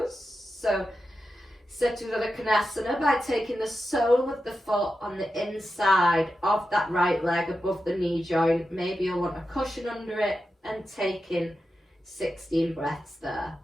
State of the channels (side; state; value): both; normal; correlation 0.90